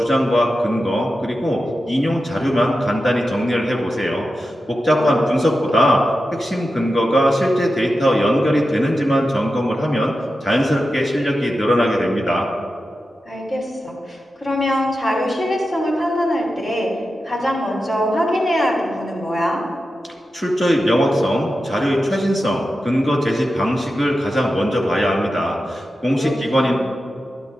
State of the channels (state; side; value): normal; both; correlation 0.91